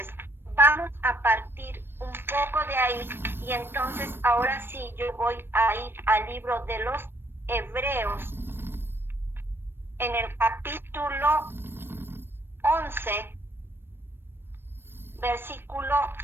vamos a partir un poco de ahí y entonces ahora sí yo voy a ir al libro de los Hebreos en el capítulo 11, versículo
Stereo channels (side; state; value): left; late; 0.10 ms